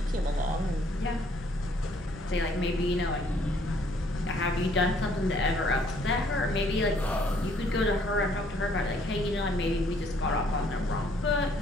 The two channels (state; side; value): normal; both; correlation 0.64